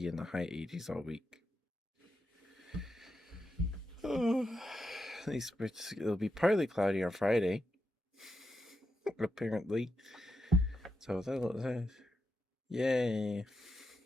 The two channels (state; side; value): normal; both; correlation 0.86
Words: in the high 80s all week. Oh, at least it'll be partly cloudy on Friday, apparently. So yay.